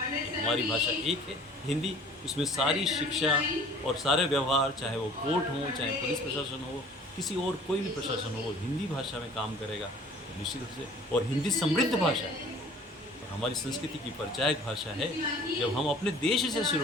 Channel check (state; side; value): normal; both; correlation 0.50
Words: हमारी भाषा एक है हिंदी, उसमें सारी शिक्षा और सारे व्यवहार, चाहे वो कोर्ट हो, चाहे पुलिस प्रशासन हो, किसी और कोई भी प्रशासन हो, हिंदी भाषा में काम करेगा निश्चित रूप से। और हिंदी समृद्ध भाषा है और हमारी संस्कृति की परिचायक भाषा है। जब हम अपने देश से शुरू